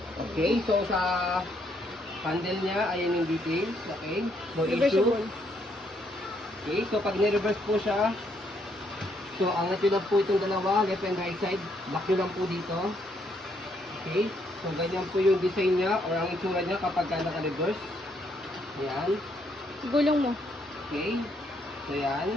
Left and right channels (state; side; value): normal; both; correlation 0.72